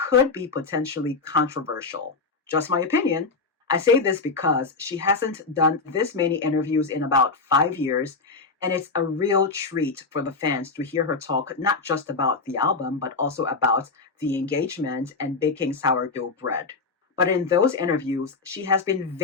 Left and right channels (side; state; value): right; quieter; 4.2 dB